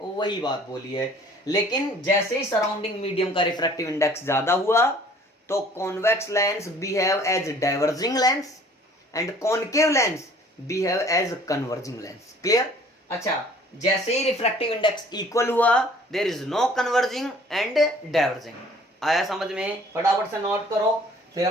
वही बात बोली है, लेकिन जैसे ही सराउंडिंग मीडियम का रिफ्रैक्टिव इंडेक्स ज्यादा हुआ तो convex lens behave as diverging lens and concave lens behave as converging lens. Clear? अच्छा, जैसे ही रिफ्रैक्टिव इंडेक्स इक्वल हुआ there is no converging and diverging. आया समझ में? फटाफट से नोट करो, फिर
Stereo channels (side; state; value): both; normal; correlation 0.53